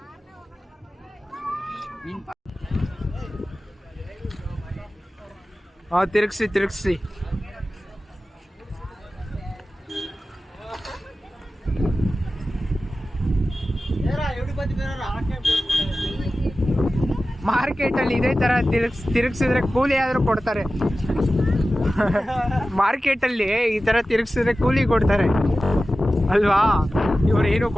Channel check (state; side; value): normal; both; correlation 0.95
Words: ತಿರುಗಿಸಿ. ಮಾರ್ಕೆಟಲ್ಲಿ ಇದೇ ಥರ ತಿರುಗಿಸಿದ್ರೆ ಕೂಲಿ ಆದರೂ ಕೊಡ್ತಾರೆ. ಮಾರ್ಕೆಟಲ್ಲಿ ಈ ಥರ ತಿರುಗಿಸಿದ್ರೆ ಕೂಲಿ ಕೊಡ್ತಾರೆ ಅಲ್ವಾ. ಇವ್ರು ಏನೂ